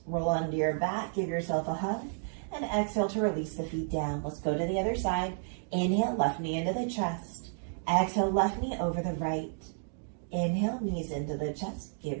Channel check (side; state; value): left; silent; digital silence